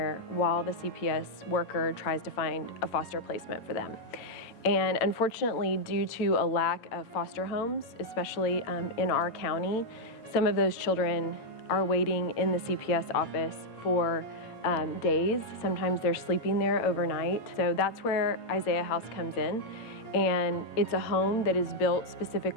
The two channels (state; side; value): late; right; 8.8 ms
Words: while the CPS worker tries to find a foster placement for them. And unfortunately, due to a lack of foster homes, especially in our county, some of those children are waiting in the CPS office for days. Sometimes they're sleeping there overnight. So that's where Isaiah House comes in. And it's a home that is built